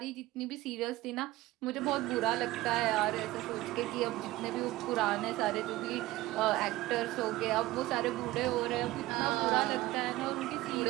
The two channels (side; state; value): left; quieter; 17.9 dB